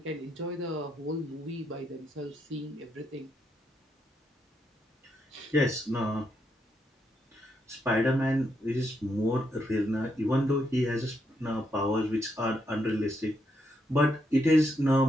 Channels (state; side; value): normal; both; correlation 0.79